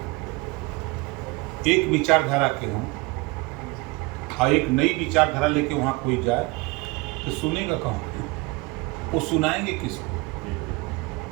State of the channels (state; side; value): quieter; left; 24.6 dB